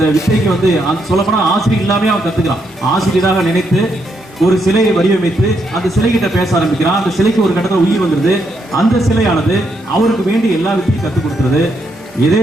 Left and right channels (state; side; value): normal; both; correlation 0.77